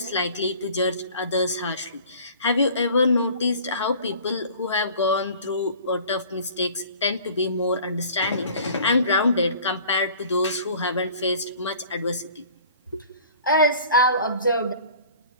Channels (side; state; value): both; inverted; correlation -0.48